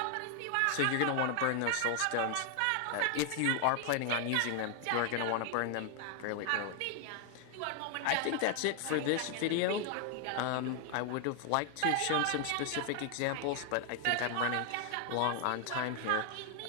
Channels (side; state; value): both; different; correlation 0.00